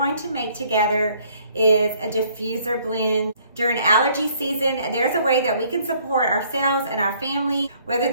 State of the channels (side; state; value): both; inverted; correlation -0.62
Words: to make together is a diffuser blend. During allergy season, there's a way that we can support ourselves and our family, whether